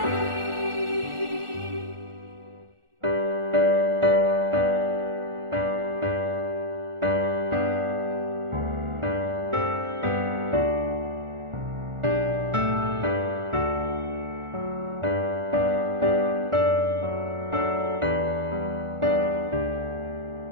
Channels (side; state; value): left; late; 1.4 ms